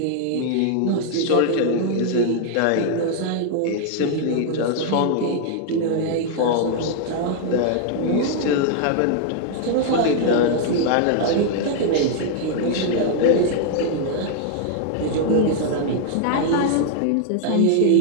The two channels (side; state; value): both; different; correlation 0.00